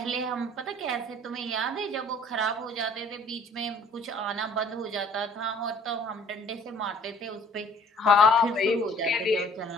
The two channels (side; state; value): both; normal; correlation 0.55